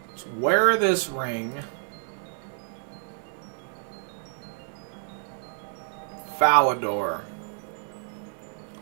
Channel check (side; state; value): left; silent; 59 dB below the other